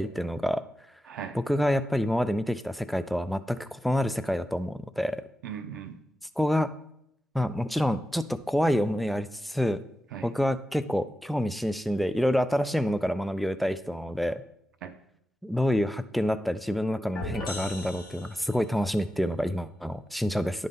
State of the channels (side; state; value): both; normal; correlation 0.92